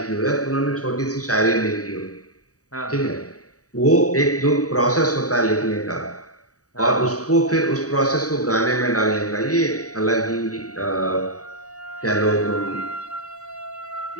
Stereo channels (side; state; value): right; late; 0.66 ms